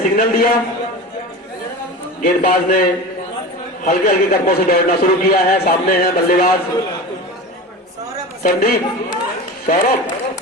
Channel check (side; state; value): both; normal; correlation 0.30